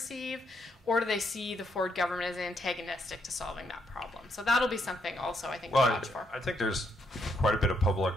or do they see the Ford government as antagonistic to solving that problem? So that'll be something also, I think, to watch for. I think there's quite a bit of public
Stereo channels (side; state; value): both; normal; correlation 0.76